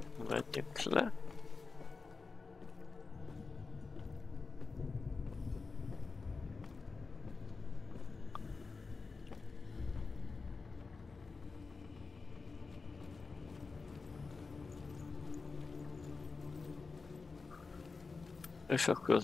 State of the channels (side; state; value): right; quieter; 4.3 dB